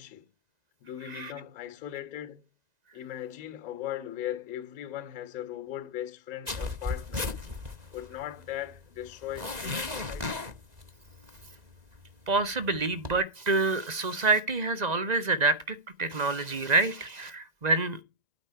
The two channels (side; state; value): left; late; 1.9 ms